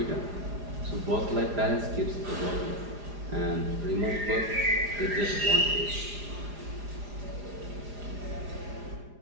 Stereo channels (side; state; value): left; late; 4.9 ms